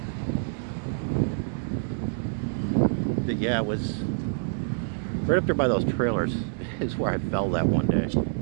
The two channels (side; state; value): left; silent; 60 dB below the other